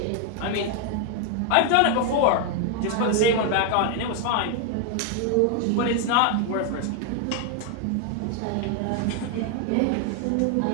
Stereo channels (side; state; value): both; different; correlation 0.01